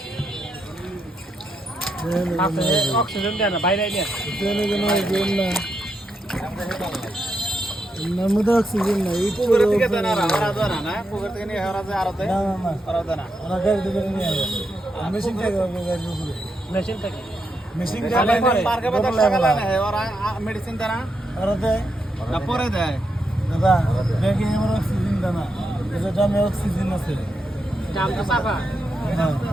আছে অক্সিজেন দেয় না বাইরে নিয়ে নর্মদা অক্সিজেন না এই তো পুকুরের দিকে দেনা ওরা দেনা না পুকুর থেকে নিয়ে হেরা যায় আরতে না না না ওরা দেনা ওরা গাড়ি দিকে নিয়ে আসে মেশিন থেকে গাড়ি উপরে মেশিন থেকে মেশিন খালি থেকে পার্কে বাজার সকালে না ওরা মেডিসিন দেনা ওরা দেয় না পরে দেয় দাদা ব্যাগে আমার অক্সিজেন দানা এটা দামে অক্সিজেন আছে দাম তো চাপা হ্যাঁ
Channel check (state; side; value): normal; both; correlation 0.83